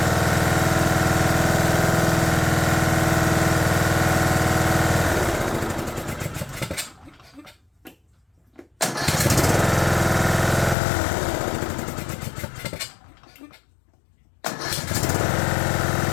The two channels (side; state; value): right; drops out; at 10.8 s